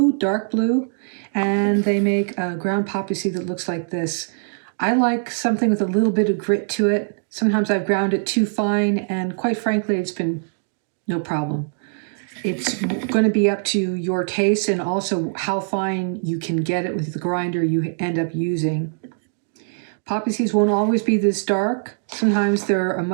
dark blue, and they make a ground poppy seed that looks like this. I like something with a little bit of grit to it. Sometimes I've ground it too fine, and quite frankly, it's been no problem. It's going to be up to your taste and also how fine you can get it with the grinder you end up using. Poppy seeds won't always be this dark. Sometimes they're a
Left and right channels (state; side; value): silent; left; digital silence